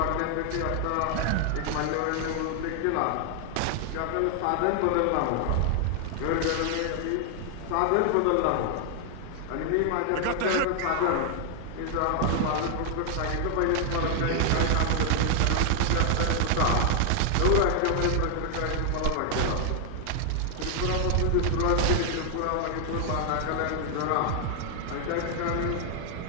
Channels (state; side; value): different; both; correlation 0.00